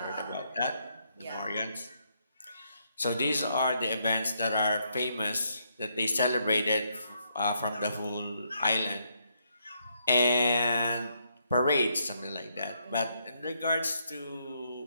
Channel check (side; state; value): both; inverted; correlation -0.75